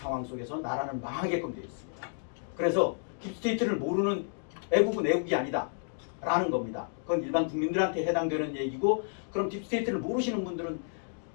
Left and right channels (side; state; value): right; silent; digital silence